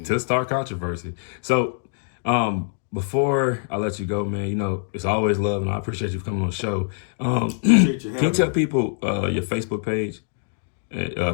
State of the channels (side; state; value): right; silent; digital silence